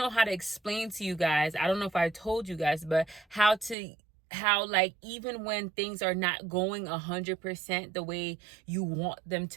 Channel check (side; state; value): left; drops out; at 3.8 s